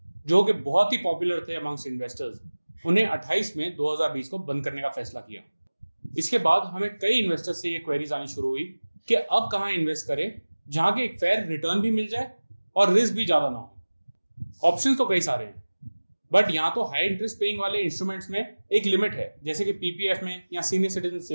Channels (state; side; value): inverted; both; correlation -1.00